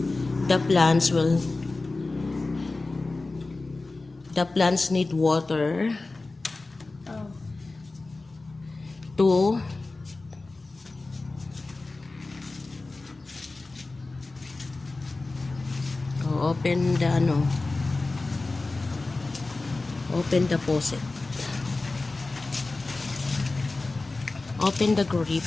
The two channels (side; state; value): right; quieter; 3.4 dB